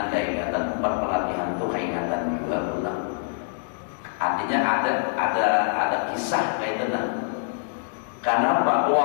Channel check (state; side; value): silent; right; digital silence